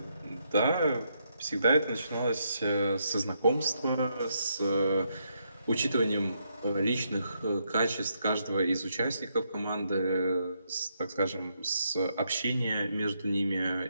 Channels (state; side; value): inverted; both; correlation -0.77